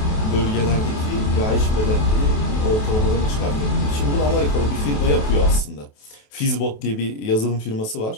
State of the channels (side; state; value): right; late; 28 ms